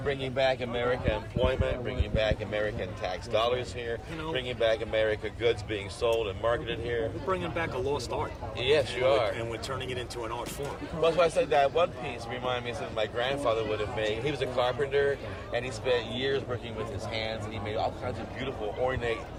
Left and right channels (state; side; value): identical; both; correlation 1.00